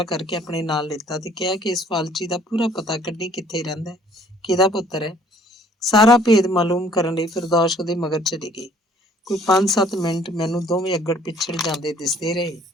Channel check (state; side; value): normal; both; correlation 0.58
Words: ਕਰਕੇ ਆਪਣੇ ਨਾਲ ਲਿੱਤਾ ਤੇ ਕਿਹਾ ਕਿ ਇਸ ਫਾਲਚੀ ਦਾ ਪੂਰਾ ਪਤਾ ਕੱਢੀ, ਕਿੱਥੇ ਰਹਿੰਦਾ, ਕਿਹਦਾ ਪੁੱਤਰ ਹੈ। ਸਾਰਾ ਭੇਦ ਮਾਲੂਮ ਕਰਨ ਲਈ ਫਿਰਦੌਸ ਉਹਦੇ ਮਗਰ ਚਲੀ ਗਈ। ਕੋਈ 5-7 ਮਿੰਟ ਮੈਨੂੰ ਦੋਵੇਂ ਅੱਗੜ ਪਿੱਛੜ ਜਾਂਦੇ ਦਿਸਦੇ ਰਹੇ।